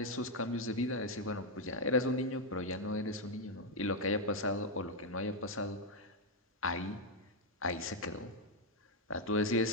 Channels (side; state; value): both; normal; correlation 0.00